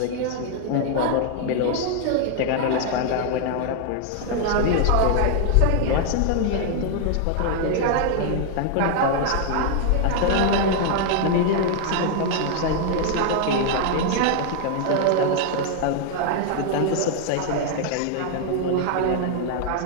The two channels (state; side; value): different; both; correlation 0.00